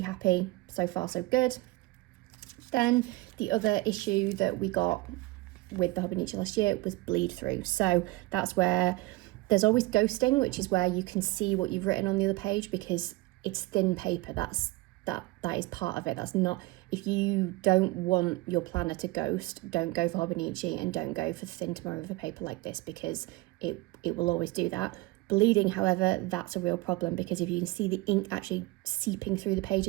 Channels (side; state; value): left; quieter; 20.9 dB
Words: happy. So far so good. Then the other issue that we got with the Hobonichi last year was bleed through. So that's where there's always ghosting, which is where you can see what you've written on the other page because it's thin paper. That is part of it. That's not, if you don't want your planner to ghost, don't go for Hobonichi and don't go for thin tomorrow paper like this, because it will always do that. Bleeding, however, that's a real problem, because if you can see the ink actually seeping through the page